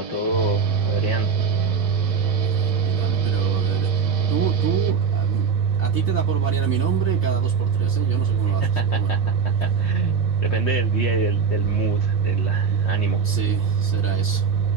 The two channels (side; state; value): left; quieter; 5.9 dB